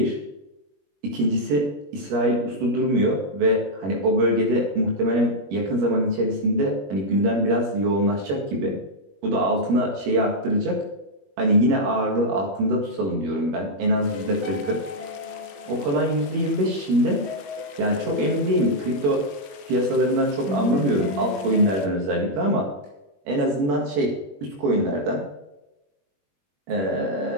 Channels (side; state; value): left; late; 21 ms